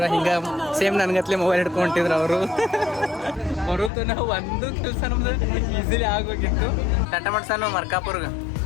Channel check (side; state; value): right; drops out; at 3.9 s